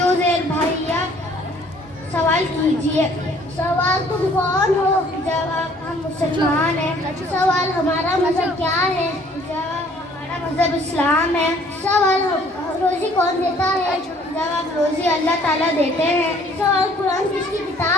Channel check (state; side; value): normal; both; correlation 0.58